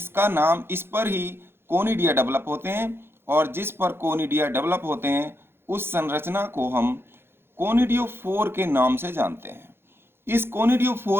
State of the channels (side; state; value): left; late; 0.11 ms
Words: नाम, इस पर ही कोनिडिया डेवलप होते हैं और जिस पर कोनिडिया डेवलप होते हैं उस संरचना को हम कोनिडियोफोर के नाम से जानते हैं। इस